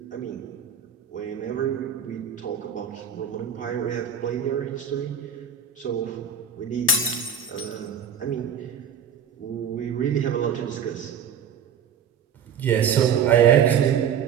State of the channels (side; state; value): left; quieter; 7.5 dB